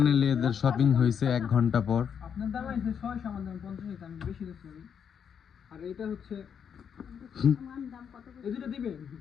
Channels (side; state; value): right; quieter; 7.6 dB